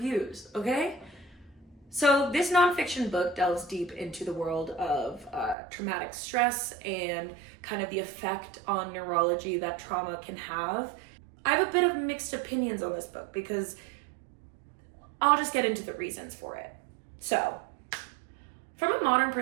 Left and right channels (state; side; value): drops out; left; at 5.6 s